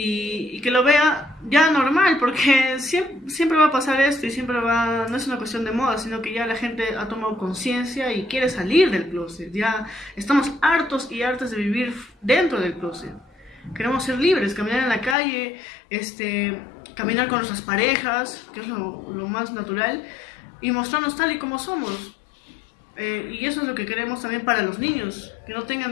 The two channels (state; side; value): drops out; right; at 15.2 s